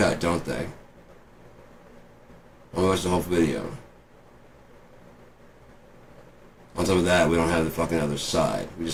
don't they? I watched the whole video. On top of that, we don't have the fucking other side. We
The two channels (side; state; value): both; identical; correlation 1.00